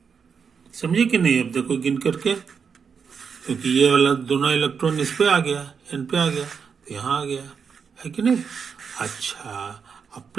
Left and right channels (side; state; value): left; quieter; 6.3 dB